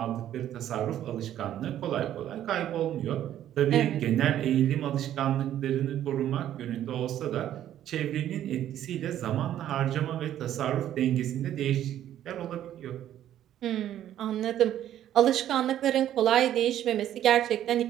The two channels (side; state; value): left; quieter; 11.6 dB